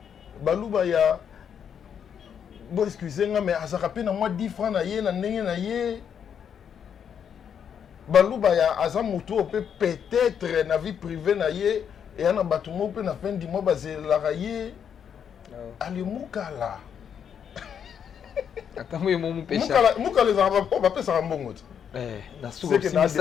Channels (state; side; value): quieter; right; 8.0 dB